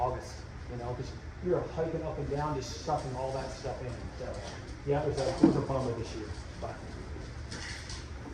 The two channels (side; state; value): both; identical; correlation 1.00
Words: because you're hiking up and down, just sucking all that stuff in. So yeah, it was a bummer this year. But